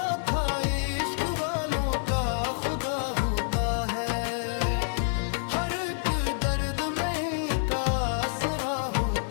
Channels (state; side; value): silent; right; digital silence